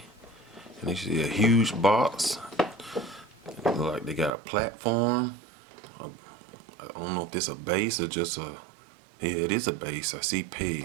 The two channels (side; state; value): left; drops out; at 4.3 s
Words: and you see a huge box. It looks like they got a platform. I don't know if this is a base or just a, yeah, it is a base. I see